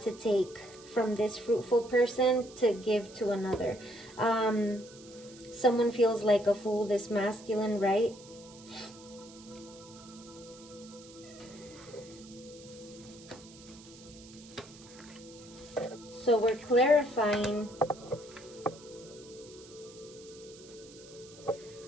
take from this fruitful person to give to another. Someone feels like a fool, this masculine, right? So we're clarifying.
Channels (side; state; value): right; noise; hiss, 20 dB below the sound